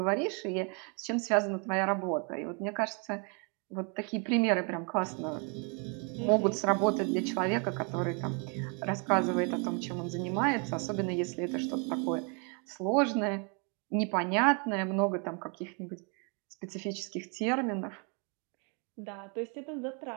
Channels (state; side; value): quieter; left; 36.2 dB